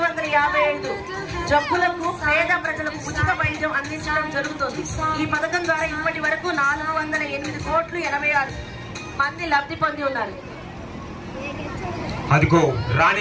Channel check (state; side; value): identical; both; correlation 1.00